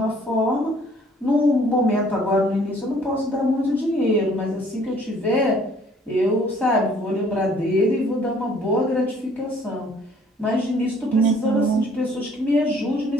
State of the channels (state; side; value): normal; both; correlation 0.59